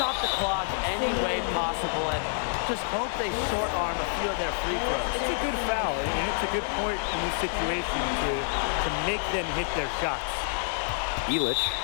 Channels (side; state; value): right; silent; 56 dB below the other